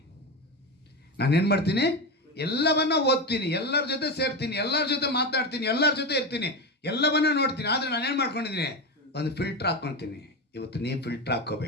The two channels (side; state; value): both; normal; correlation 0.18